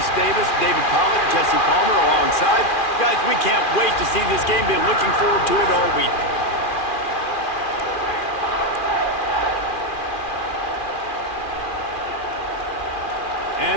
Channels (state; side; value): late; right; 2.4 ms